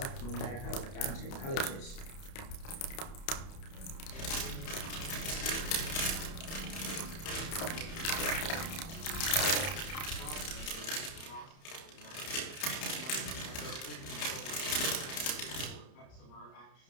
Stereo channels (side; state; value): right; late; 30 ms